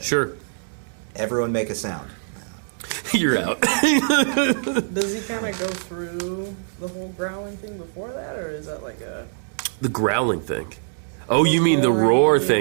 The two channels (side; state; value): left; silent; digital silence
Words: Sure, Everyone make a sound. you're out. Does he kind of go through the whole growling thing before that, or is that like a... The growling thing. Oh, you mean the roar